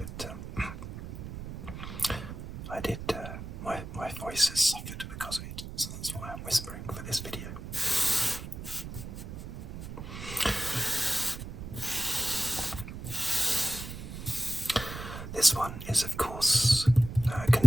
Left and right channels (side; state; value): right; noise; rumble, 9 dB below the sound